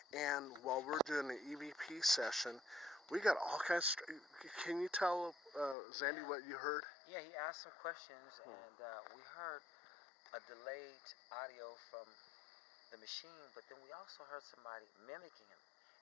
And while we're doing the EVP session, we got all kinds of... Can you tell Xandy what you heard? Yeah, he asked some questions, and we heard a delayed audio from the machine, but then we also heard somebody mimicking him.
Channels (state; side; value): drops out; right; at 5.8 s